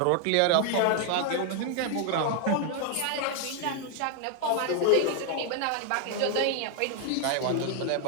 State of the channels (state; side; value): different; both; correlation 0.00